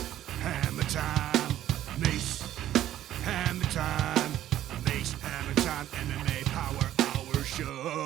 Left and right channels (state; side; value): quieter; left; 12.6 dB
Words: Hammertime, Mace, Hammertime, Mace, Hammertime, MMA Power Hour